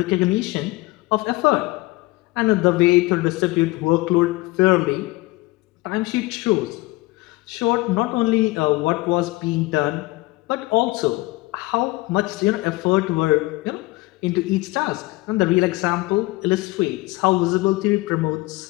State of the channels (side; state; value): right; quieter; 21.2 dB